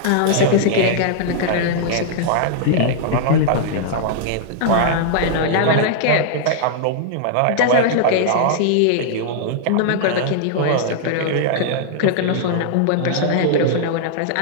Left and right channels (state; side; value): different; both; correlation -0.01